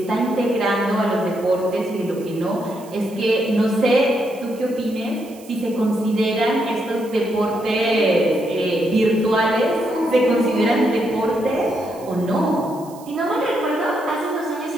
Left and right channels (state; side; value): noise; right; hiss, 23 dB below the sound